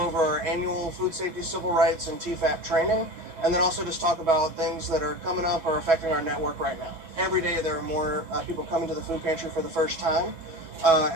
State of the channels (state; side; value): late; left; 6.2 ms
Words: over our annual food safety, civil rights, and TFAP training, and then also just talk about things that are coming up or affecting our network right now. Every day there are more people coming to the food pantry for the first time,